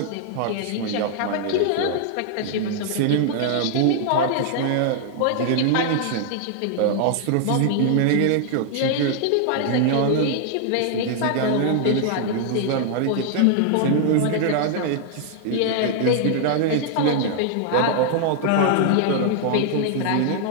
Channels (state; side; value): different; both; correlation -0.01